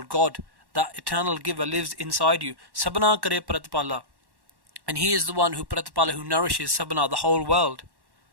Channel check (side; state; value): left; late; 1.1 ms